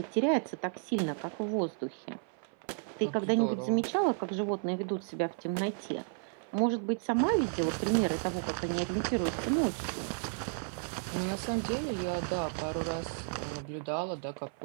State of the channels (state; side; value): silent; left; 56 dB below the other